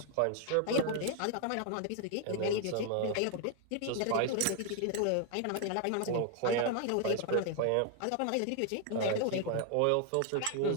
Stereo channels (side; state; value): both; different; correlation 0.00